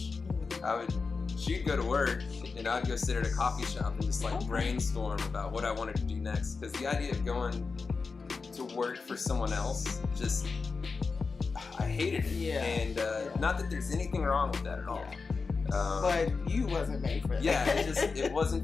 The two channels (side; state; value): right; quieter; 4.6 dB